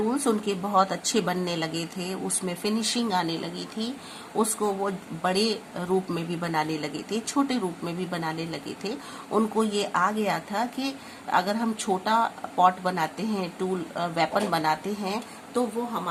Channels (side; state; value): both; identical; correlation 1.00